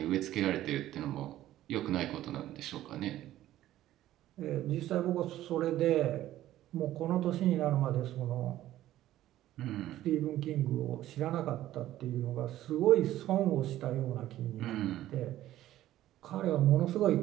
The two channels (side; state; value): left; quieter; 13.9 dB